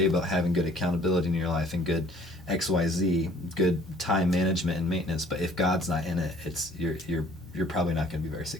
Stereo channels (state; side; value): normal; both; correlation 0.56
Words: about having good accountability in your life and good XYZ, good time management and maintenance. But if God's not in it, you're probably not going to be very